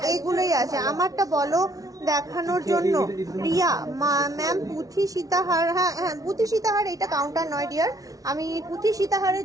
এইগুলোই আছে। আমারটা বলো দেখানোর জন্য। রিয়া ম্যাম পুঁথি সীতাহার, হ্যাঁ হ্যাঁ পুঁথি সীতাহার এটা কাউন্টার নয় ডিয়ার, আমি পুঁথি সীতাহারের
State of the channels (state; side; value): late; left; 0.18 ms